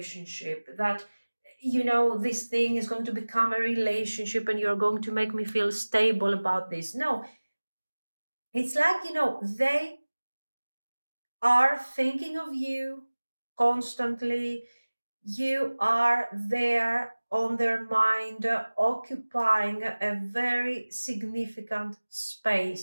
That this thing is going to become a relationship, and you're going to make me feel stable about this. No, it's like they are thinking of you constantly. You are there on their mind, occupying a very significant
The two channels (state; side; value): inverted; both; correlation -1.00